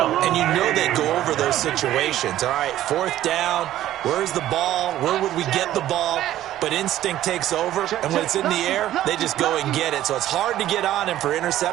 And you know they go over those situations. All right, 4th down, where's the ball? Where would we get the ball? But instinct takes over, and when it's in the air, they just go and get it. So it's hard to get on him for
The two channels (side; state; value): left; quieter; 13.2 dB